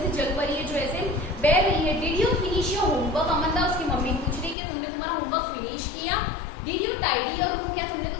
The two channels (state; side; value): drops out; right; at 4.5 s